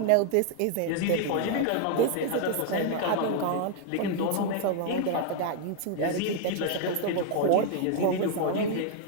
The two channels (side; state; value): both; different; correlation 0.00